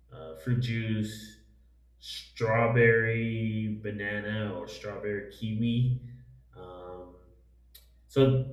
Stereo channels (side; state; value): both; identical; correlation 1.00